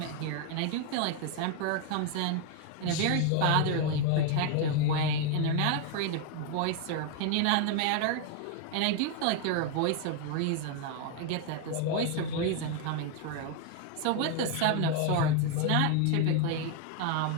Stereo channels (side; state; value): both; different; correlation 0.01